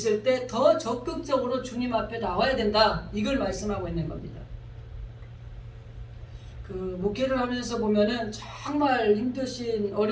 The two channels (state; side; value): identical; both; correlation 1.00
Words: 때 더 적극적으로 주님 앞에 나와야 된다. 이걸 말씀하고 있는 겁니다. 그 목회를 하면서 보면은 정말 힘드신